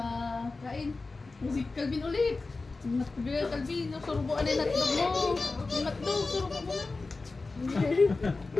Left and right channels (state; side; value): quieter; right; 3.7 dB